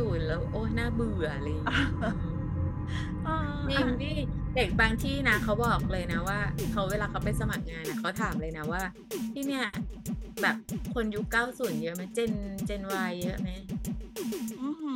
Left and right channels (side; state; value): both; identical; correlation 1.00